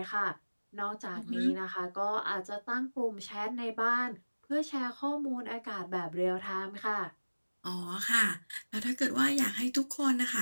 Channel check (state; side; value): inverted; both; correlation -1.00